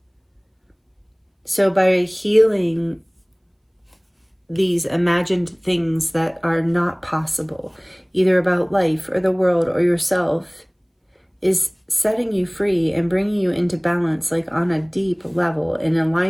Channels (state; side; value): identical; both; correlation 1.00